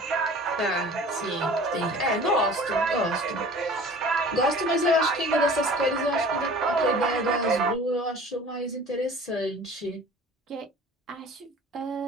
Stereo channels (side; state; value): both; normal; correlation 0.44